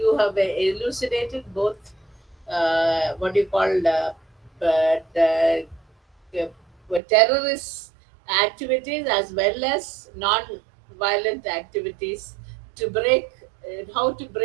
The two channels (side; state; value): left; drops out; at 7.0 s